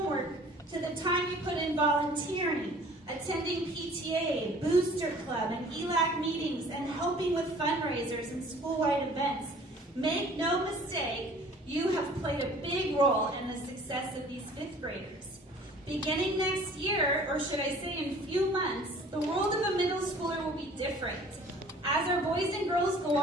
to the time you put in volunteering, attending PTA, Booster Club, and ELAC meetings, and helping with fundraisers and school-wide events. Make no mistake, you have played a big role in the success of these 5th graders. Beginning next year, or should I say in a few months, the world of a middle schooler will be different. As our boys and girls go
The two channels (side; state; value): both; normal; correlation 0.50